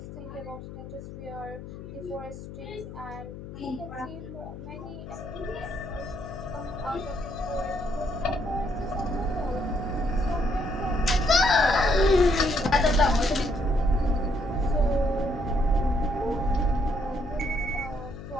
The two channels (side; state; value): left; noise; hum, 12 dB below the sound